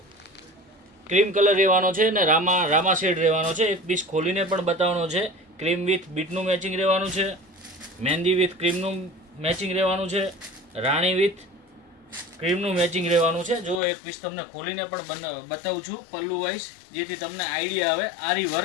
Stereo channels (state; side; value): drops out; right; at 13.8 s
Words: ક્રીમ કલર રહેવાનો છે ને રામા શેડ રહેવાનો છે. એક પીસ ખોલીને પણ બતાવવાનો છે. ક્રીમ વિથ બીટનું મેચિંગ રહેવાનું છે, મહેંદી વિથ ક્રીમનું મેચિંગ રહેવાનું છે, રાણી વિથ ક્રીમનું મેચિંગ રહેવાનું છે. જો એક પીસ તમને ખોલીને પણ બતાવું છું પલ્લુ વાઇઝ, જેથી તમને આઈડિયા આવે. આરી